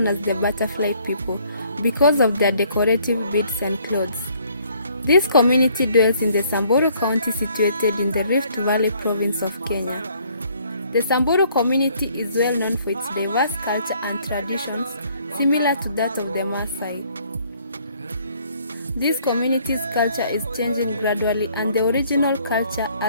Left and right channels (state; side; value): inverted; both; correlation -0.62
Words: as the butterfly people because of their decorative beads and clothes. This community dwells in the Samburu County situated in the Rift Valley province of Kenya. The Samburu community is well known for its diverse culture and traditions similar to that of the Maasai. This community's culture is changing gradually and the original culture